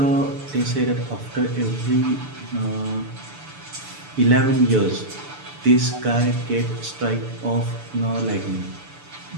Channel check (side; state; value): left; late; 6.8 ms